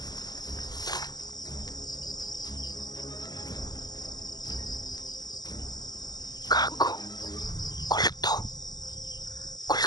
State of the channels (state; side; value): late; right; 0.20 ms